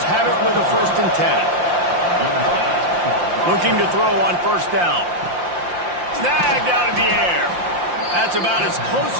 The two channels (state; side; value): late; left; 5.7 ms